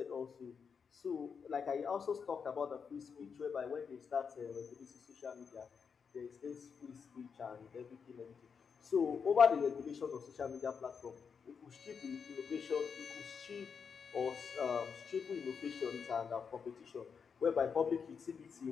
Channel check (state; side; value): quieter; right; 6.2 dB